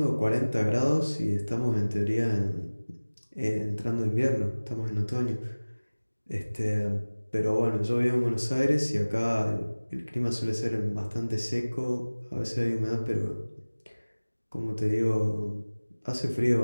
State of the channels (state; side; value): inverted; both; correlation -1.00